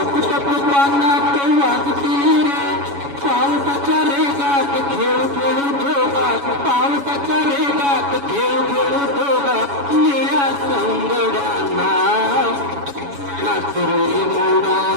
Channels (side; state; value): left; late; 7.1 ms